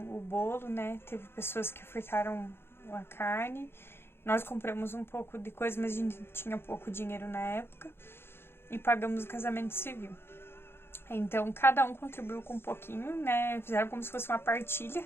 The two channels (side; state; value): right; late; 0.11 ms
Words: o bolo, né? Teve pessoas que ofertaram a carne. Nós compramos um pouco de coisa, mas a gente tinha pouco dinheiro na época. E pagamos o casamento civil. Então, cada um contribuiu com um pouquinho, né? Fizeram como se fosse uma partilha,